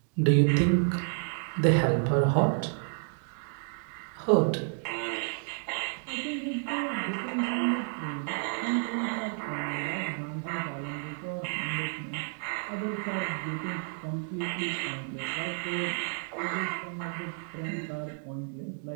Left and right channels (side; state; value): left; silent; 57 dB below the other